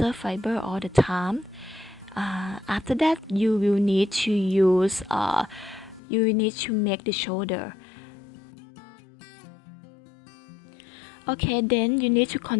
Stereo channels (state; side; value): drops out; right; at 6.0 s